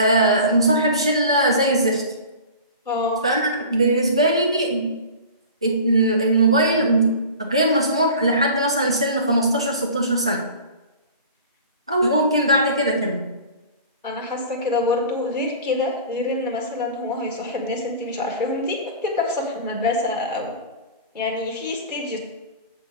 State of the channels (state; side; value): inverted; both; correlation -0.40